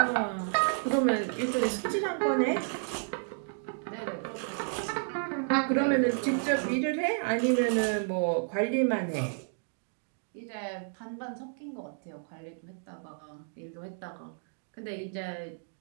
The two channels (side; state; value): left; silent; digital silence